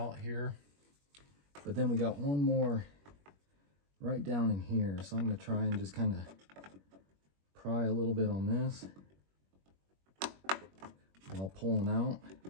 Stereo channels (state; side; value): late; left; 21 ms